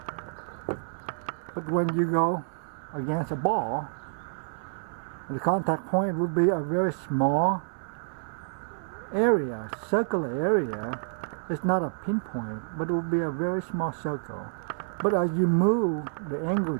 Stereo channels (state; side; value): silent; left; 59 dB below the other